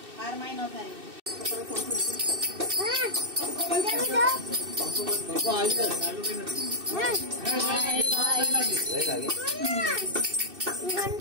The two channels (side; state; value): left; late; 2.6 ms